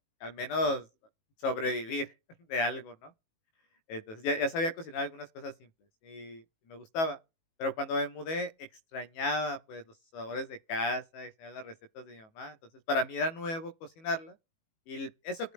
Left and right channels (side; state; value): right; late; 18 ms